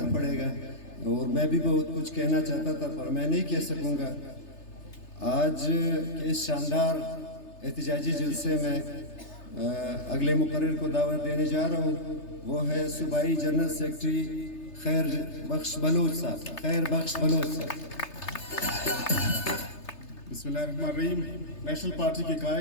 پڑے گا, اور میں بھی بہت کچھ کہنا چاہتا تھا پر میں نہیں کہہ سکوں گا. آج کے اس شاندار احتجاجی جلسے میں اگلے مقرر کو دعوت دینے جا رہا ہوں, وہ ہے صوبائی جنرل سیکرٹری خیر بخش بلوچ صاحب. خیر بخش بلوچ صاحب. بسم اللہ الرحمن الرحیم. نیشنل پارٹی کے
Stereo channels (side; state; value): right; late; 3.3 ms